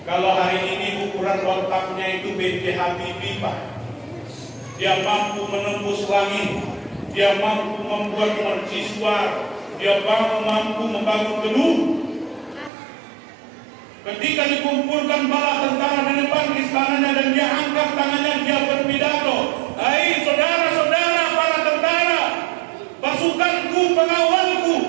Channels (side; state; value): left; drops out; at 12.7 s